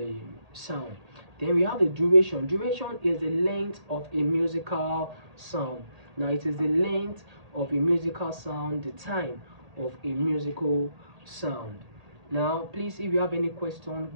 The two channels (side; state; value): left; late; 1.8 ms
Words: sound. Then we have the duration. Duration is the length of a musical sound. Now, it is the length of a musical sound, the time of a musical sound. Now, please, if you have any question,